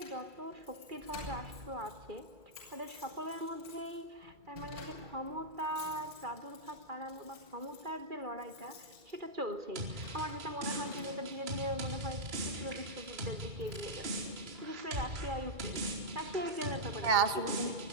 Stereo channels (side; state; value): left; late; 2.3 ms